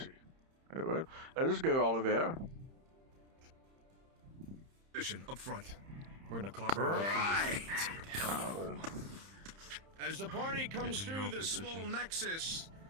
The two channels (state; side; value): late; left; 30 ms